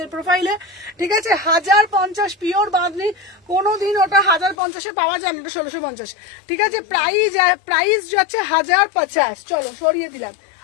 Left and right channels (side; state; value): right; drops out; at 4.5 s